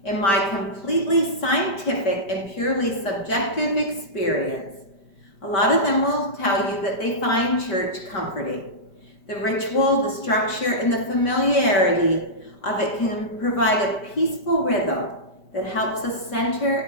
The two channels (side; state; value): right; late; 5.1 ms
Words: in my completely scientific and purely subjective experience, a lot of them will tell you that they find church comforting. The ritual, the structure, and the familiarity of it can provide a peaceful rhythm that helps us center